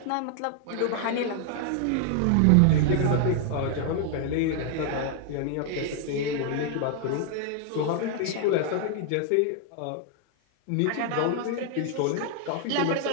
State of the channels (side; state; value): both; different; correlation 0.00